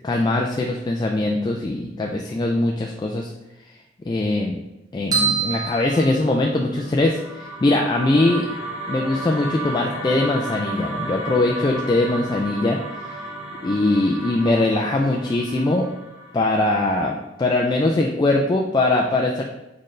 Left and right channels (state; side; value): normal; both; correlation 0.59